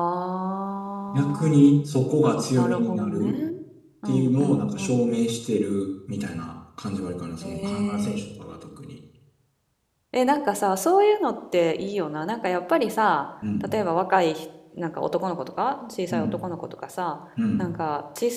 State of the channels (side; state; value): both; identical; correlation 1.00